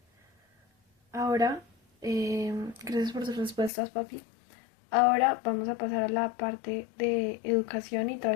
Ahora, gracias por tus respuestas, papi. Ahora vamos a pasar a la parte de educación y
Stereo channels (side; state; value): right; drops out; at 3.7 s